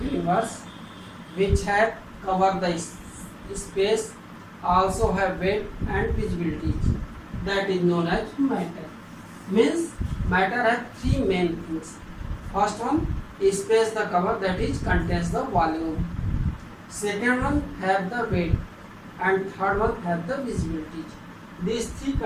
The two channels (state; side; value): identical; both; correlation 1.00